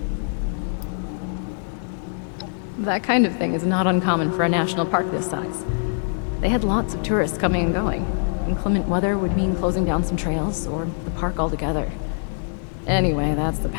That kind of thing is not uncommon for a national park this size. They had lots of tourists coming and going. Inclement weather would mean closing down some trails, or the park altogether. Anyway, that's the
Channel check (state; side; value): silent; right; digital silence